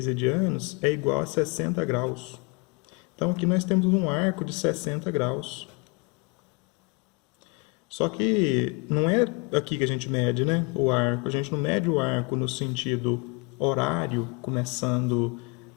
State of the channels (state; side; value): quieter; right; 30.5 dB